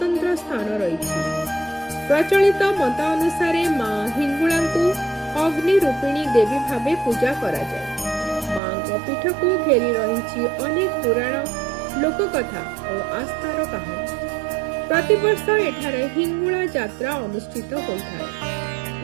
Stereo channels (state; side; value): drops out; left; at 8.6 s